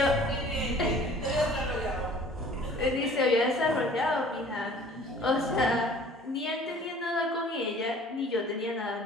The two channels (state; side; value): normal; both; correlation 0.50